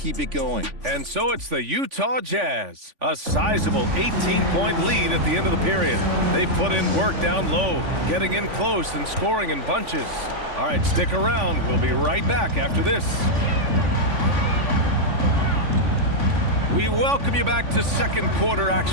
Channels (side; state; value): left; late; 3.5 ms